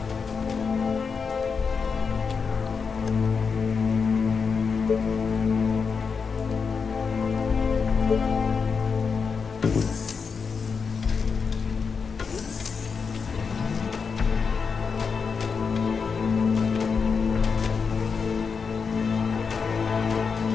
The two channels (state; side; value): quieter; right; 5.5 dB